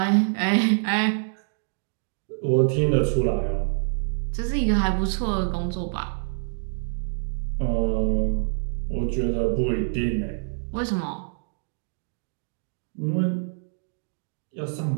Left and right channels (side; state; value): left; silent; digital silence